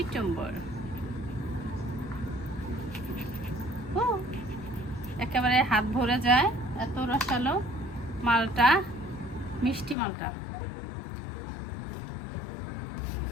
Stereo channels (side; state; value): right; drops out; at 10.0 s